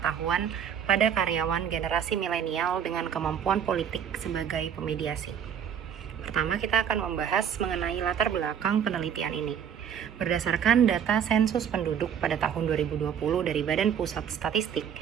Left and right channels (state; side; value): quieter; left; 8.4 dB